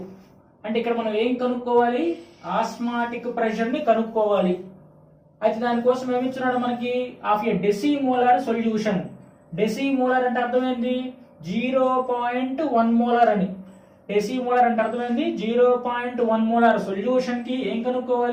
అంటే ఇక్కడ మనం ఏం కనుక్కోవాలి, ఆస్మాటిక్ ప్రెషర్ ని కనుక్కోవాలి. అయితే దానికోసం ఏమిచ్చున్నాడు మనకి, ఆఫ్ ఏ డెసిమోలార్ సొల్యూషన్. డెసిమోలార్ అంటే అర్థమైంది 0.1 మోలార్ అని. డెసిమోలార్ అంటే అర్థమైంది 0.1 మోలార్ సొల్యూషన్ కి ఏం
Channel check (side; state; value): both; identical; correlation 1.00